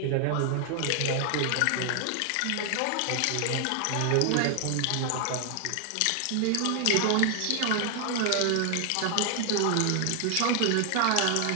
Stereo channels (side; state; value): both; different; correlation 0.00